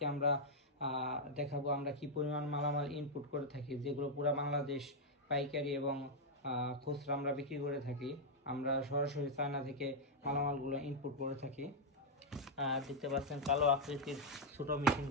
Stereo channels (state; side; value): normal; both; correlation -0.02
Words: আমরা দেখাবো আমরা কি পরিমাণ মালামাল ইনপুট করে থাকি, যেগুলো পুরো বাংলাদেশ পাইকারি এবং খুচরা আমরা বিক্রি করে থাকি। আমরা সরাসরি চায়না থেকে মালামালগুলো ইনপুট করে থাকি। দেখতে পাচ্ছেন কালো আকৃতির ছোটো